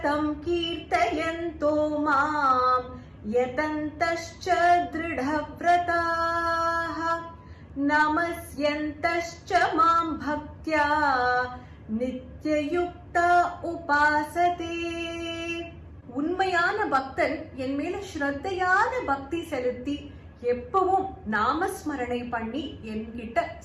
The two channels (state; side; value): identical; both; correlation 1.00